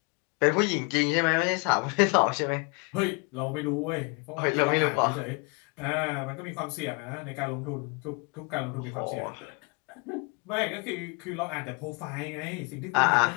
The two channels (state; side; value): quieter; right; 32.9 dB